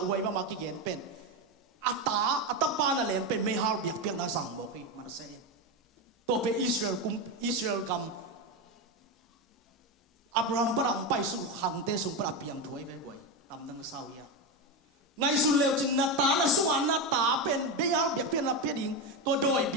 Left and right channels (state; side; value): normal; both; correlation 0.14